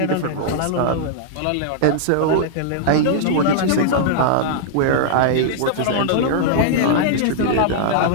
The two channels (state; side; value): different; both; correlation -0.01